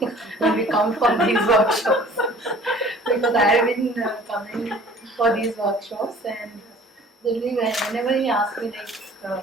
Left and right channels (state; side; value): normal; both; correlation 0.50